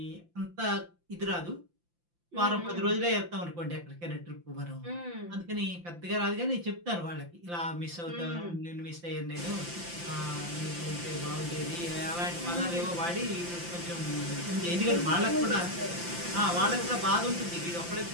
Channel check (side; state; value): left; late; 5.8 ms